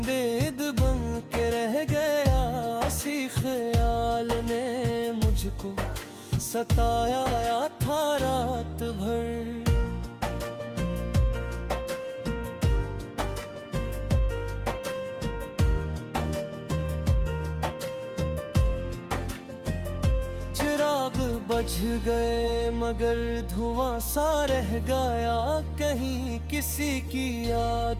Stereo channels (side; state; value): both; identical; correlation 1.00